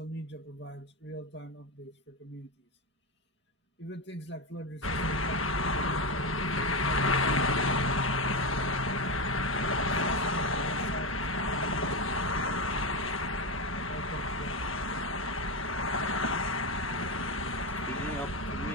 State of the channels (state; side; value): normal; both; correlation 0.14